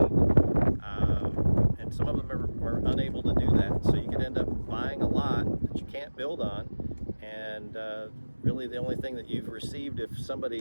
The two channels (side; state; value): both; inverted; correlation -1.00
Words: and some of them are unable to do that, so you could end up buying a lot that you can't build on, and really the only thing that you've received, if